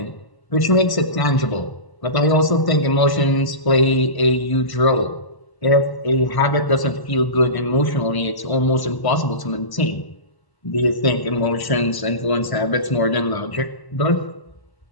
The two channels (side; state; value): right; late; 1.0 ms